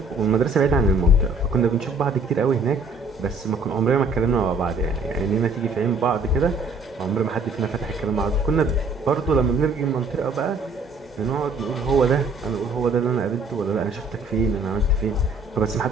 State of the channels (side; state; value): left; quieter; 3.1 dB